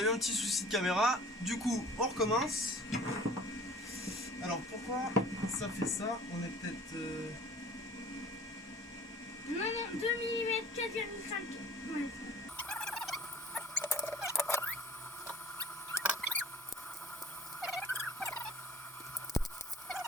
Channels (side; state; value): both; normal; correlation 0.47